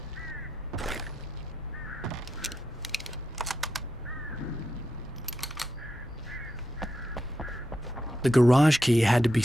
The garage key had to be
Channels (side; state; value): both; normal; correlation 0.85